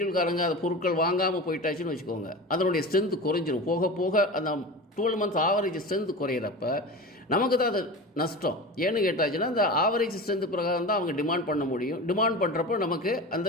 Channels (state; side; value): normal; both; correlation 0.30